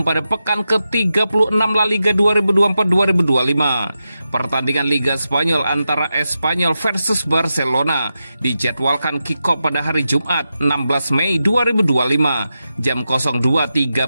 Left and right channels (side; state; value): both; inverted; correlation -0.89